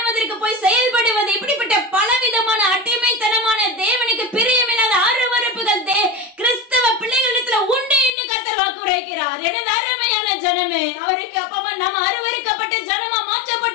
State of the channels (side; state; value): right; drops out; at 8.1 s